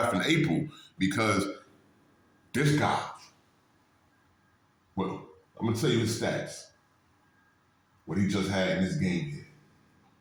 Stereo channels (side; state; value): both; identical; correlation 1.00